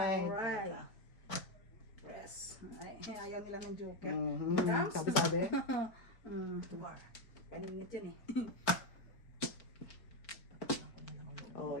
alright. Press. Ay, ayaw nila ng joker. Mhm. Dams? Sabi-sabi. Paningit yan eh.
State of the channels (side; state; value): right; late; 4.5 ms